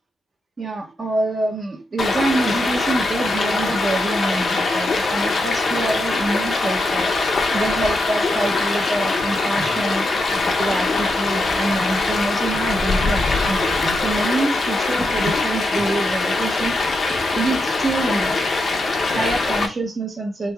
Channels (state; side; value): normal; both; correlation 0.84